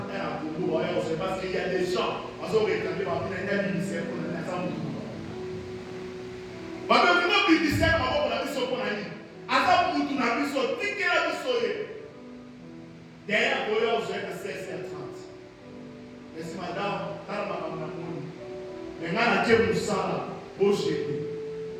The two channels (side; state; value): both; identical; correlation 1.00